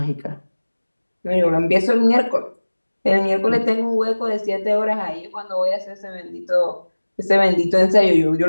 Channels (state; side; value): inverted; both; correlation -1.00